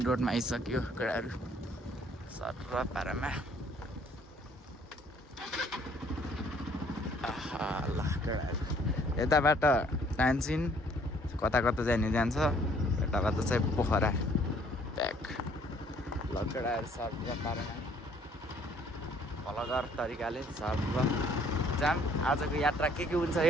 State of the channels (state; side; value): normal; both; correlation 0.61